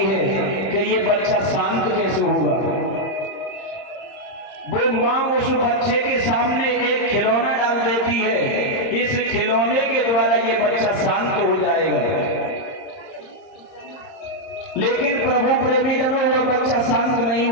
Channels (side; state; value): right; late; 30 ms